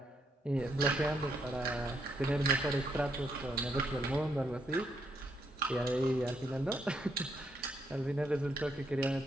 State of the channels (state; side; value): normal; both; correlation 0.76